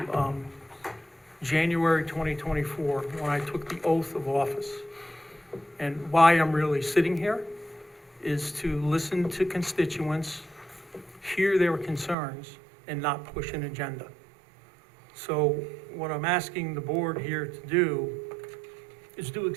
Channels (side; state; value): left; drops out; at 12.2 s